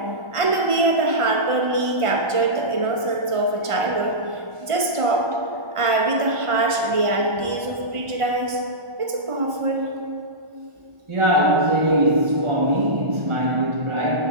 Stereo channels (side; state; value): left; late; 1.5 ms